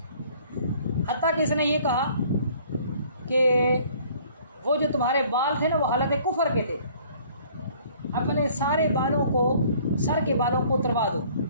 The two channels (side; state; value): both; inverted; correlation -0.56